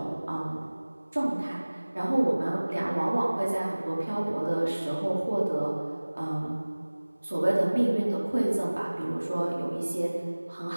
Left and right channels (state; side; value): inverted; both; correlation -1.00